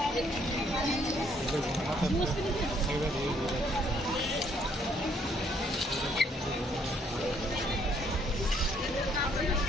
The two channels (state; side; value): normal; both; correlation 0.67